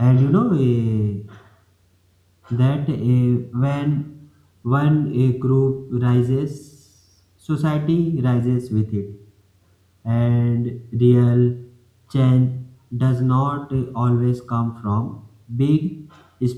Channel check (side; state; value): both; identical; correlation 1.00